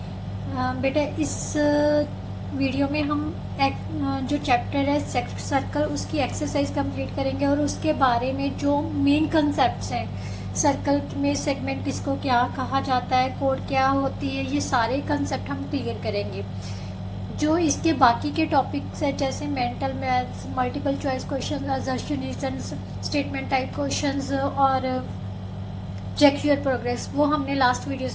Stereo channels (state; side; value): identical; both; correlation 1.00